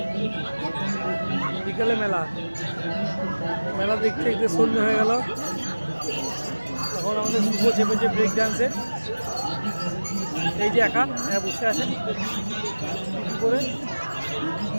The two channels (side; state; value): both; inverted; correlation -1.00